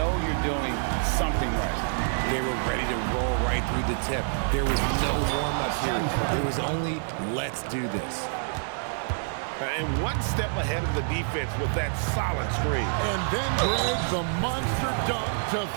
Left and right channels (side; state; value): left; silent; digital silence